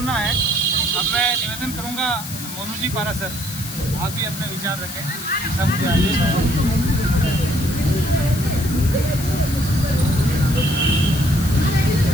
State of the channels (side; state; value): left; noise; hiss, 10 dB below the sound